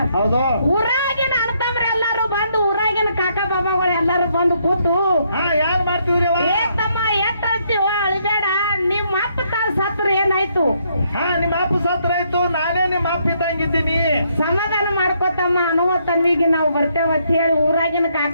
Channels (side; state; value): both; inverted; correlation -0.73